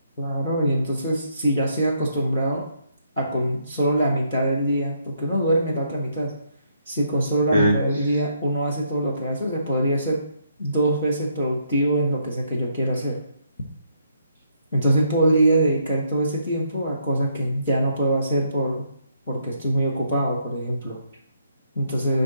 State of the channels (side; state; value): both; inverted; correlation -0.73